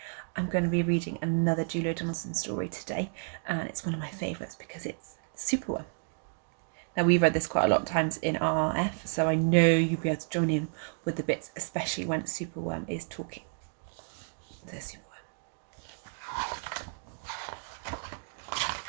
I'm going to be reading another Julia Donaldson story today, and it's one of my favourites because it's Superworm. Now, we've read this quite a lot of times in RRF, so I know you'll be able to join in with the bits, especially when Superworm is talking. There's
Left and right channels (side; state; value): left; silent; 57 dB below the other